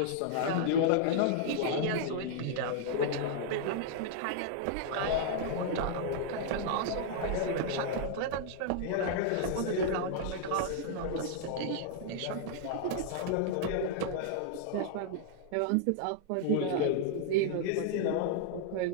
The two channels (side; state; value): both; different; correlation -0.01